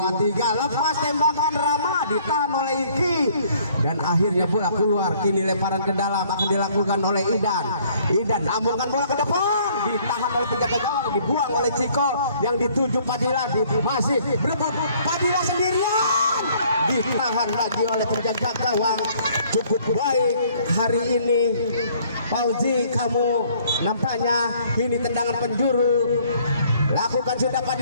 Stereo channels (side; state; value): both; inverted; correlation -0.61